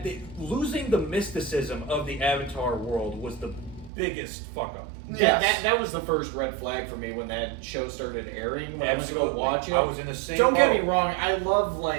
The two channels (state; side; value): drops out; left; at 3.9 s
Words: Losing the mysticism of the Avatar world was the biggest fuck up. That was the first red flag for me when that show started airing. When I went to go watch it, I was in the same Don't boat. get me wrong. I love